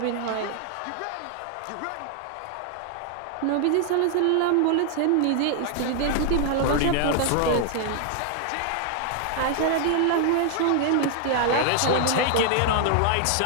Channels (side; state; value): both; different; correlation 0.00